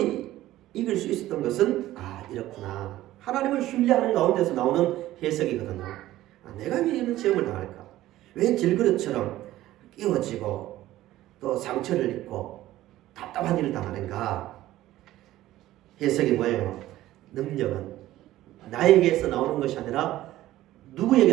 이길 수 있었던 것은 이렇구나. 하나님을 신뢰하는 가운데서 나오는 해석이거든요. 내가 왜 이런 시험을 당할까? 왜 질그릇처럼 끼워지고 또 상처를 입고 답답한 일을 당하는가? 해석이 뭐예요? 능력은 나에게서 나오는 것이 아니라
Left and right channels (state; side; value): quieter; left; 15.1 dB